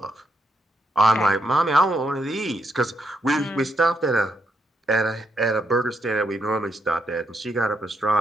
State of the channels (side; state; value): both; normal; correlation 0.78